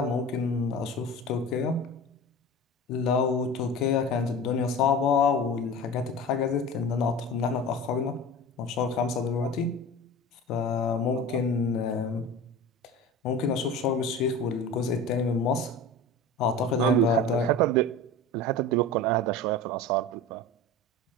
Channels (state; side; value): normal; both; correlation 0.33